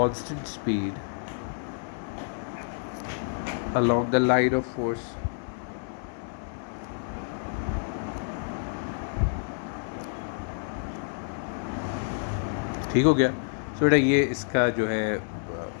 speed along the line of force। ठीक हो गया। तो बेटा ये इसका जो है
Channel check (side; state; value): right; silent; 59 dB below the other